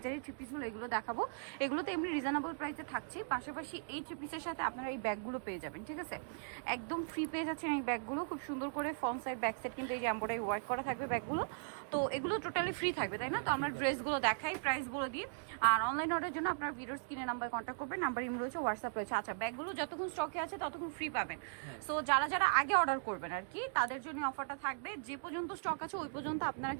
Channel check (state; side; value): silent; left; digital silence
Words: থ্রি পিসগুলো এগুলো দেখাবো, এগুলো তো এমনি রিজনেবল প্রাইসে থাকছে। পাশাপাশি এই থ্রি পিসের সাথে আপনারা এই ব্যাগগুলো পেয়ে যাবেন, ঠিক আছে? একদম ফ্রি পেয়ে যাচ্ছেন এই ব্যাগগুলো। খুব সুন্দর করে ফ্রন্ট সাইড ব্যাক সাইড কিন্তু এই যে এমব্রয়ডারি ওয়ার্ক করা থাকবে ব্যাগগুলো। তো এগুলো টোটালি ফ্রি থাকবে, তাই না? তো আমরা ড্রেসগুলো দেখাই, প্রাইস বলে দিই। আর অনলাইন অর্ডারের জন্য আপনার ভিডিওর স্ক্রিনে নাম্বার কন্ট্যাক্ট করবেন, নাম্বার ইমেল রয়েছে, হোয়াটসঅ্যাপ রয়েছে। আচ্ছা, ব্যাগগুলো যতক্ষণ স্টকে আছে ততক্ষণ ফ্রি পাবেন। সো যারা যারা আগে অর্ডার করবেন আর কি, তাদের জন্য অফারটা থাকবে। যে পর্যন্ত স্টক আছে ওই পর্যন্ত আপনারা